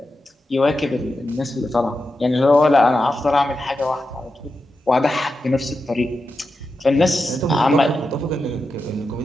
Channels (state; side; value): normal; both; correlation 0.89